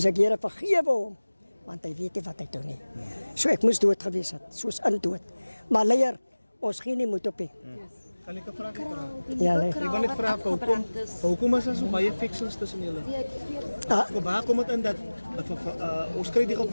ek Here vergewe hom, want hy weet nie wat hy doen nie. So ek moes dood gewees het, soos in dood. Maar leier, ons gee nie moed op nie. Kan ek 'n vraag vra? Ja, nee. Ek wil net vra hoekom is daar so baie fictions tussen julle? Waar kom dit in dat ons kry die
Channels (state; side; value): inverted; both; correlation -1.00